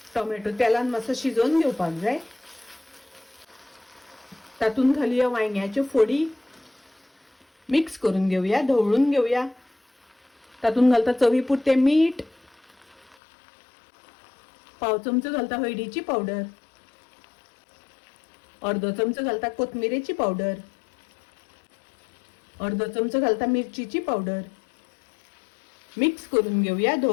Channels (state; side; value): drops out; right; at 13.2 s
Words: टोमॅटो तेलान मातसो शिजोवन घेवपाक जाय। तातूंत घालुया वांयग्याच्यो फोडी। मिक्स करून घेवया, ढवळून घेवया। तातूंत घालता चवी पुरते मीठ। पाव चमचो घालता हळदीची पावडर। अर्दो चमचो घालता कोथमिरेची पावडर। अर्दो चमचो घालता मिरचीची पावडर। मिक्स करून घेवया,